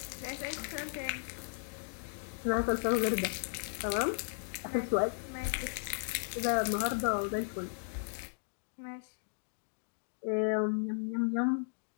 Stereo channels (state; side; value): silent; right; digital silence